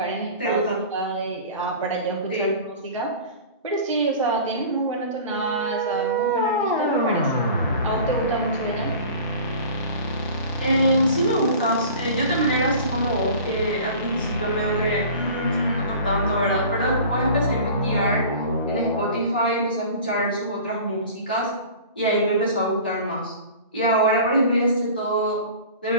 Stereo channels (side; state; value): both; inverted; correlation -0.41